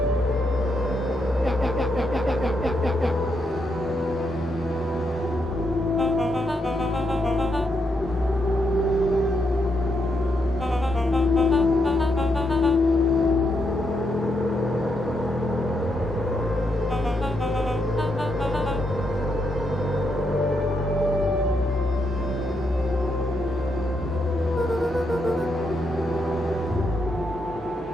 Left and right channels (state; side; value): normal; both; correlation 0.80